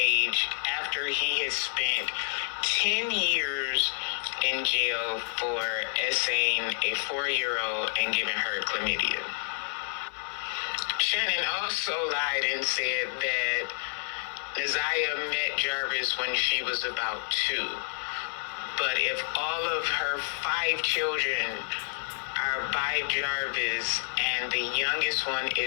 after he had spent 10 years in jail for essaying a 4-year-old and giving her chlamydia. Shannon also lied and said that Naziah met Jarvis when she was about 2. But if all of her 5 children are by Jarvis and the youngest one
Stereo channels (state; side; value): silent; right; 59 dB below the other